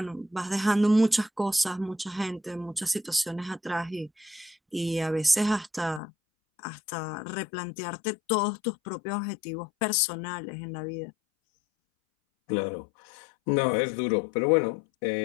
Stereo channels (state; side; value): drops out; right; at 6.0 s